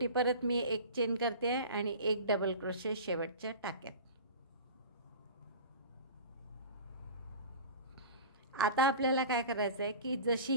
परत मी 1 चेन करते आहे आणि 1 डबल क्रोशे शेवटच्या टाक्यात. आता आपल्याला काय करायचं आहे की जशी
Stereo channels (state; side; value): inverted; both; correlation -0.36